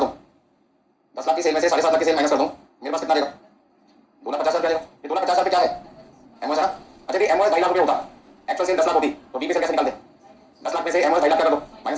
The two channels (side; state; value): both; identical; correlation 1.00